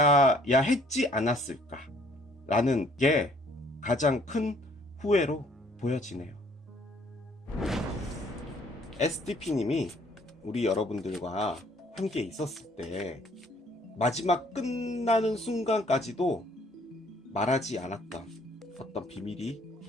했지 않았을까 라는 게 가장 큰 후회로 보여지네요. SDP님이 우리 여러분들과 함께 있었을 때 마지막 끝나는 순간까지도 말하지 않았던 어떤 비밀이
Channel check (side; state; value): both; normal; correlation 0.60